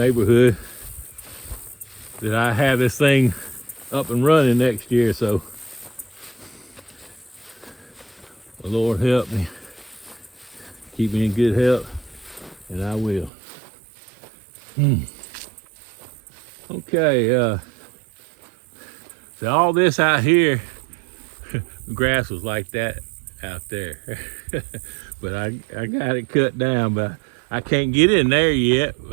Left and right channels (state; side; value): drops out; left; at 13.3 s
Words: that I have this thing up and running next year. So the Lord help me, keep me in good health, and I will. Okay, so all this out here, grass was like that out there. But I got it cut down, but I can't get in there yet.